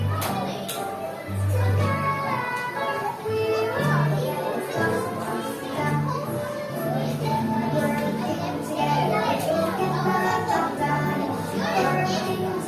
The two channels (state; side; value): identical; both; correlation 1.00